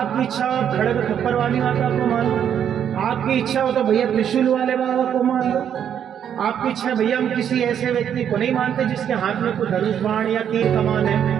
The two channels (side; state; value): left; quieter; 9.0 dB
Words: इच्छा हो आप खड़ग खप्पर वाली माता को मानो, आपकी इच्छा हो तो भैया त्रिशूल वाले बाबा को मान लो, आपकी इच्छा भैया हम किसी ऐसे व्यक्ति को नहीं मानते जिसके हाथ में कोई धनुष बाण या तीर कमान